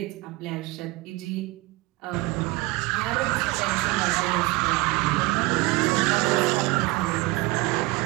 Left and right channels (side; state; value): left; quieter; 22.3 dB